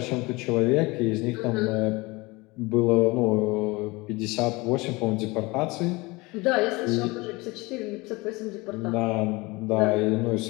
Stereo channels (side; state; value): right; quieter; 23.6 dB